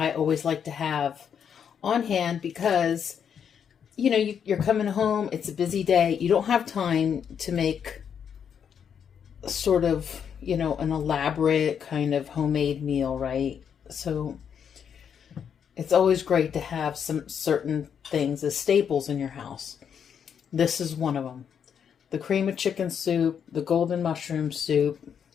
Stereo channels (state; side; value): quieter; right; 7.8 dB